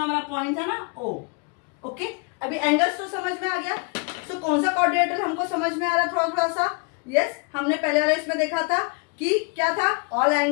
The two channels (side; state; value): right; quieter; 34.4 dB